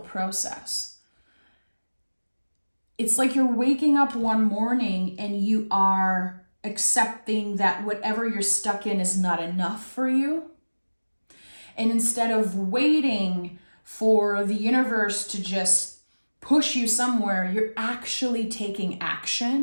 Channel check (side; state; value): both; inverted; correlation -1.00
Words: It's like you're waking up one morning and you are accepting that whatever you're stuck in is not enough for you. And instead of waiting for the universe to just push you somewhere, you're actually taking